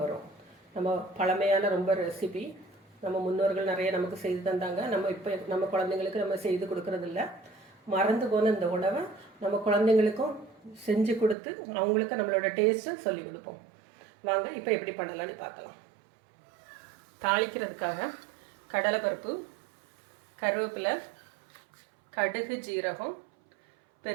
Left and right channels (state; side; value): drops out; left; at 11.4 s